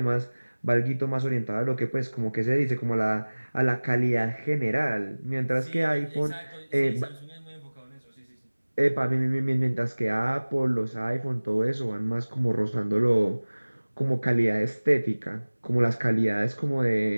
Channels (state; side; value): inverted; both; correlation -1.00